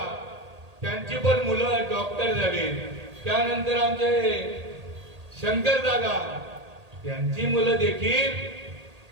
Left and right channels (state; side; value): late; left; 1.8 ms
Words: त्यांची पण मुलं डॉक्टर झाली। त्यानंतर आमचे शंकर दादा, त्यांची मुलं देखील